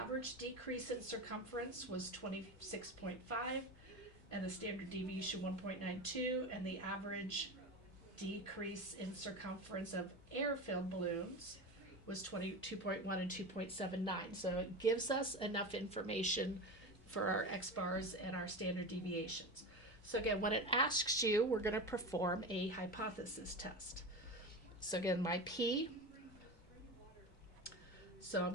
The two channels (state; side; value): normal; both; correlation 0.25